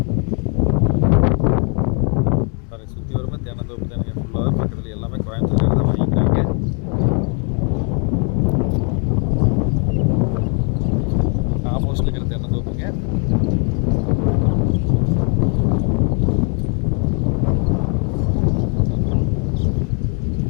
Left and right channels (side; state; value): right; quieter; 38.6 dB